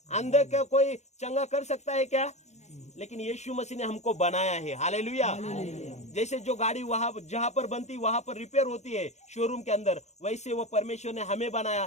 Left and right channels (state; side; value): late; right; 0.33 ms